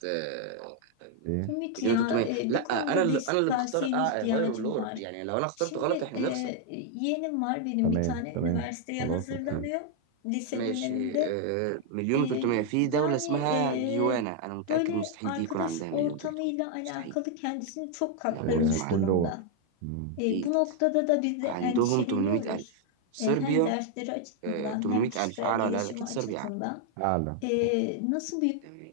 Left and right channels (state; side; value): different; both; correlation 0.00